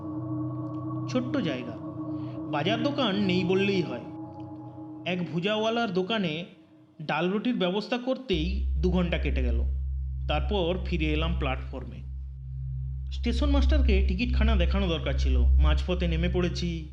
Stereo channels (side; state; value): both; identical; correlation 1.00